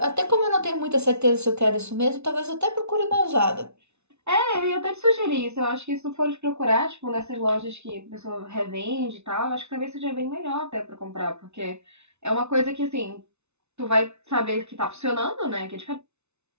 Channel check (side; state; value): left; late; 0.81 ms